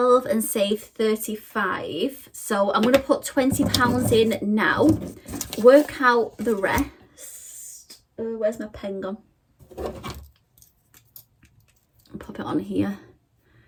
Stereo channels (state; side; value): identical; both; correlation 1.00